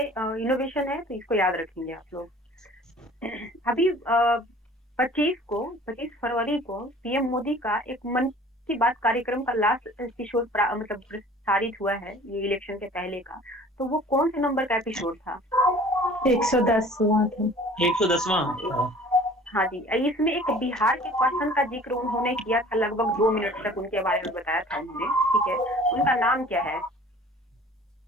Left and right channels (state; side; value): normal; both; correlation 0.48